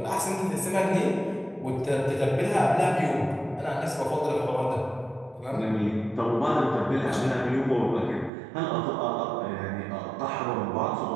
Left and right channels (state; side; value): drops out; left; at 8.3 s